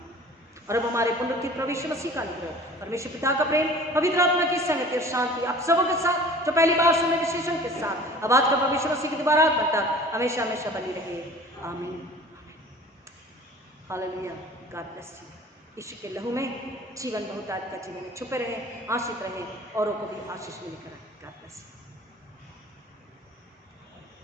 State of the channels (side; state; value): both; normal; correlation 0.45